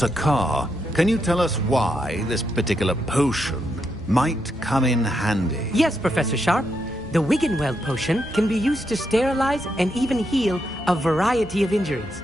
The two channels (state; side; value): normal; both; correlation 0.81